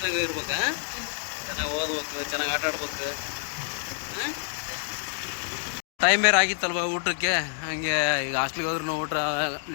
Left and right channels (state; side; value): silent; right; digital silence